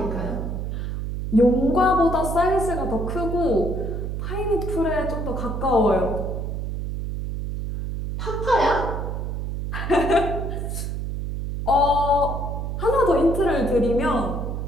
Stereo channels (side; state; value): right; noise; hum, 4 dB below the sound